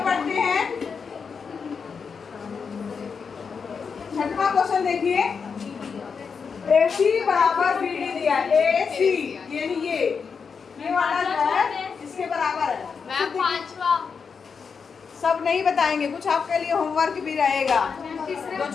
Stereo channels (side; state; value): right; quieter; 5.8 dB